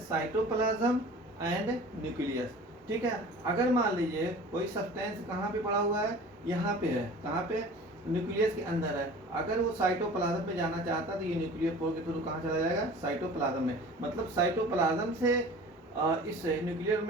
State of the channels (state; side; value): normal; both; correlation 0.42